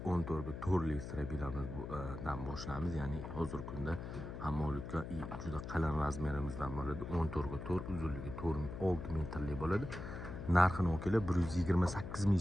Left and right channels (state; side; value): noise; left; hum, 8 dB below the sound